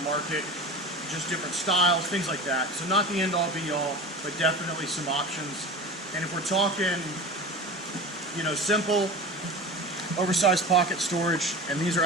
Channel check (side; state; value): both; normal; correlation 0.32